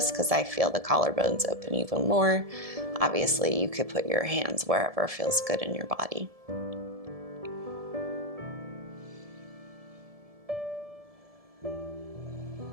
because I feel the collarbones open even more. Obviously, you could put your hands wherever feels good in your body.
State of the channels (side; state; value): left; late; 1.7 ms